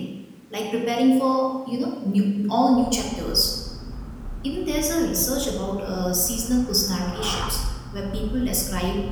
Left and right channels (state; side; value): identical; both; correlation 1.00